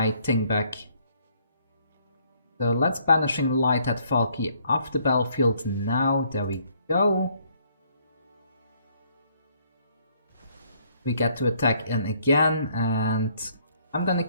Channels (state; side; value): inverted; both; correlation -0.66